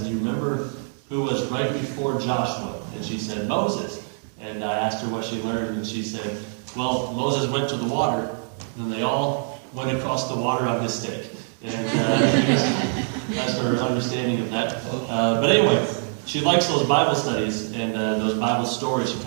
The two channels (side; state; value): left; silent; 62 dB below the other